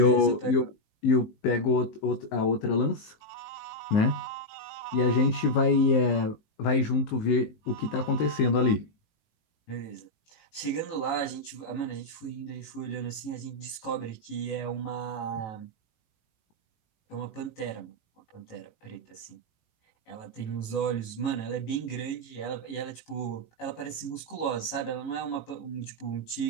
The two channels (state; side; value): late; right; 18 ms